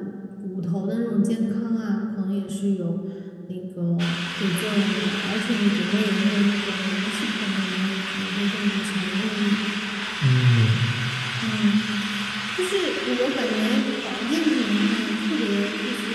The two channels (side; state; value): both; identical; correlation 1.00